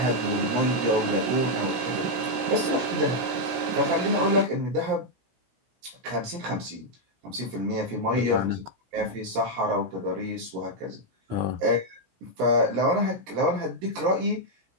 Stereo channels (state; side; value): late; left; 16 ms